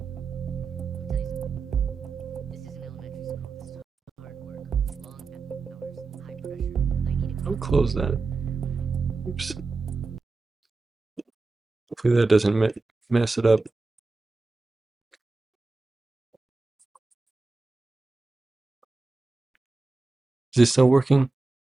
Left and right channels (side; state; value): left; quieter; 3.7 dB